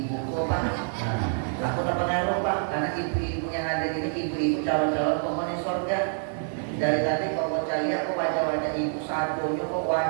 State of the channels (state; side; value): silent; left; digital silence